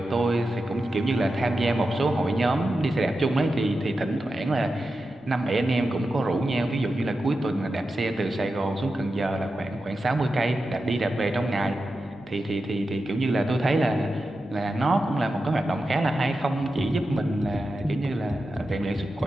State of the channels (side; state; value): right; noise; hum, 29 dB below the sound